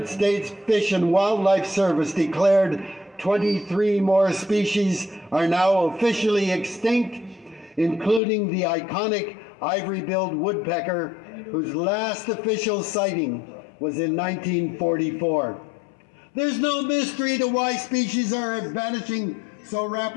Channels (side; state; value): right; drops out; at 8.2 s